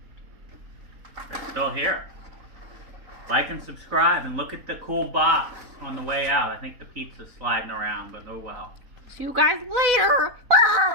It's still here. Like and subscribe and look at the cool box on the way out. I think the pizza's sliding around, but oh well. See you guys later.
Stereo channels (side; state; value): left; late; 4.0 ms